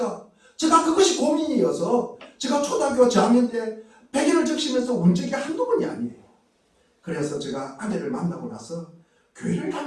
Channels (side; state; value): both; identical; correlation 1.00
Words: 제가 그것이 고민이어서 제가 초등학교 저학년 때 베개를 적시면서 운 적이 한두 번이 아니에요. 그래서 제가 아내를 만나고 나서 교회를